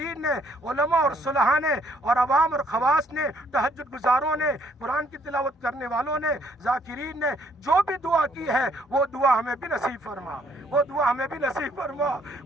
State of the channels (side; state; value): both; normal; correlation 0.66